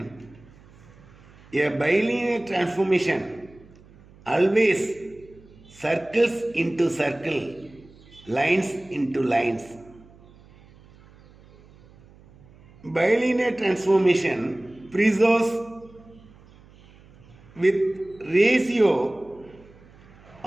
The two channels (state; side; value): noise; right; hum, 25 dB below the sound